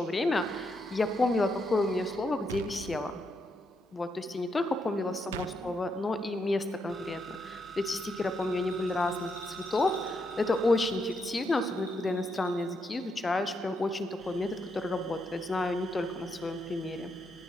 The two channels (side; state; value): both; normal; correlation 0.80